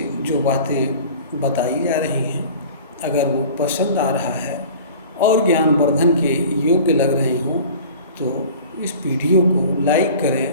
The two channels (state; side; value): inverted; both; correlation -0.42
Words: जो बातें बताई जा रही हैं, अगर वो पसंद आ रहा है और ज्ञानवर्धन के योग्य लग रही हों तो इस वीडियो को लाइक करें,